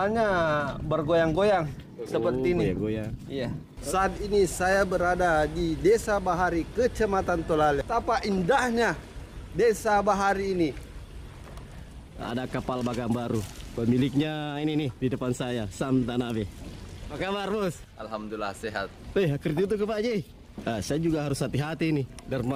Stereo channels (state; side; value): identical; both; correlation 1.00